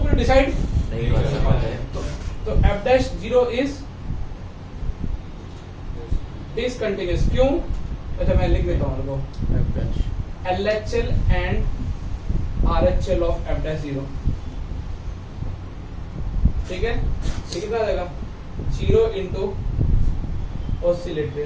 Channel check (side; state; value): both; identical; correlation 1.00